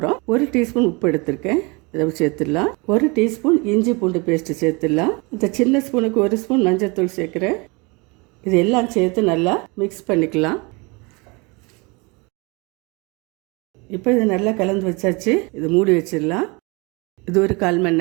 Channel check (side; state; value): left; quieter; 28.0 dB